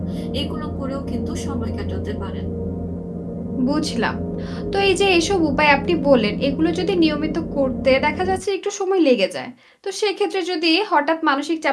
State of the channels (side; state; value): both; identical; correlation 1.00